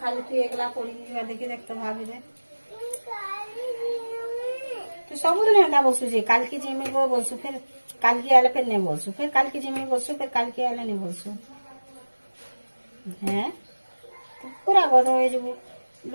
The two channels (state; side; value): inverted; both; correlation -1.00